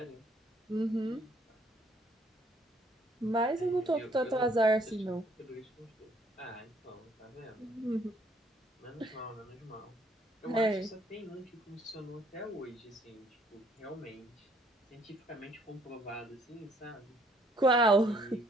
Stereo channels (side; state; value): both; normal; correlation 0.64